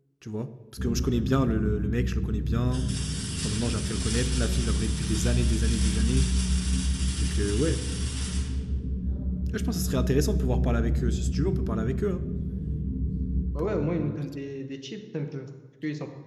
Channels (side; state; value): both; identical; correlation 1.00